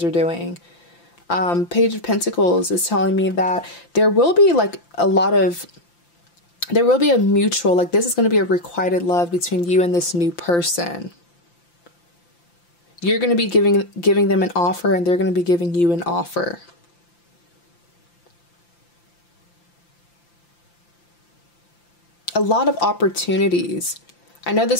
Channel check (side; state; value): right; late; 5.8 ms